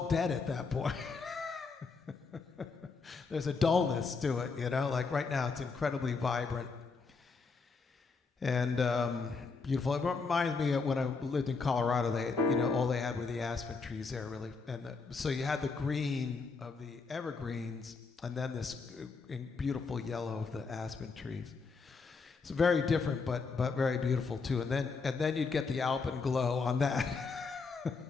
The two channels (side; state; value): right; quieter; 4.6 dB